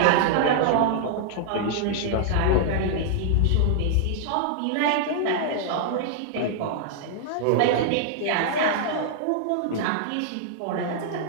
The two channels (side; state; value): both; different; correlation -0.01